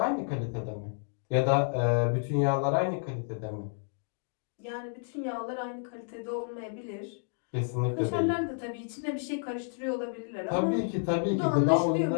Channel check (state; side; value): silent; right; digital silence